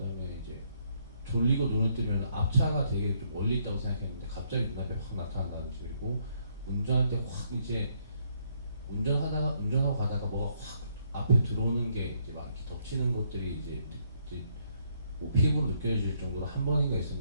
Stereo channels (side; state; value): both; inverted; correlation -0.71